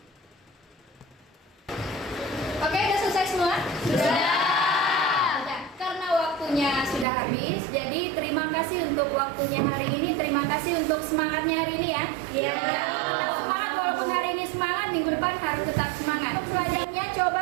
Oke, udah selesai semua? Sudah. Karena waktunya sudah habis, jadi terima kasih untuk waktunya hari ini. Terima kasih untuk semangatnya hari ini ya. Iya. Semangat, walaupun hari ini semangat, minggu depan harus tetap semangat. Pelajarannya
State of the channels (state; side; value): drops out; left; at 7.1 s